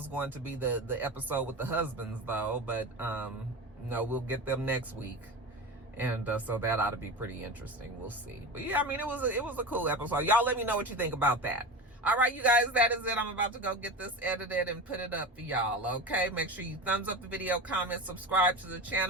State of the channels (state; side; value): normal; both; correlation 0.28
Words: going to be the episode with the husbands, though, but no, we'll get them next week. And so that ought to be pretty interesting. We'll see. But yeah, I mean, it was a cool episode. Y'all let me know what you think about that. All right, you guys, that is it. I'm about to go get this edited and put it up for y'all, okay? Make sure you thumbs up the video, comment, subscribe to the